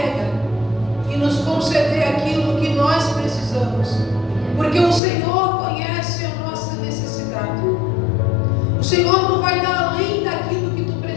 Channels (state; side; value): drops out; right; at 5.0 s